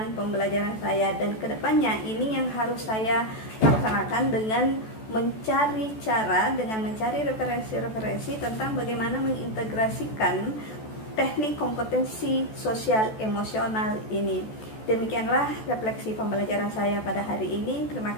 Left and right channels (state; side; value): late; right; 14 ms